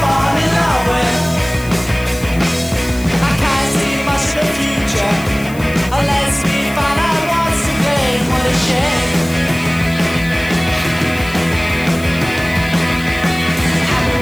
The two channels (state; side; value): noise; left; hiss, 18 dB below the sound